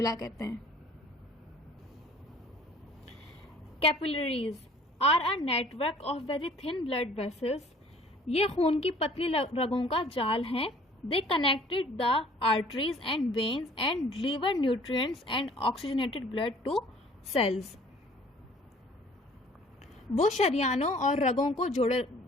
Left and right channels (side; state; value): both; normal; correlation 0.53